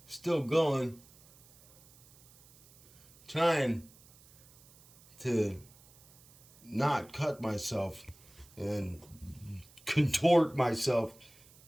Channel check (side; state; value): right; noise; hiss, 26 dB below the sound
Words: still going. Trying to not cut myself and contort myself